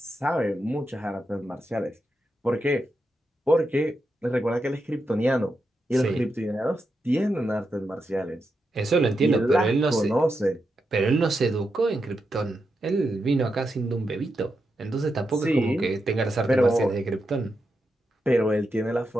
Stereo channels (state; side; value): normal; both; correlation 0.86